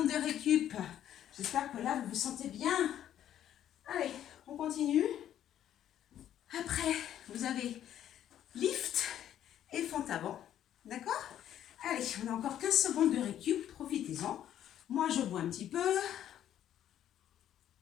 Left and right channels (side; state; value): right; quieter; 11.0 dB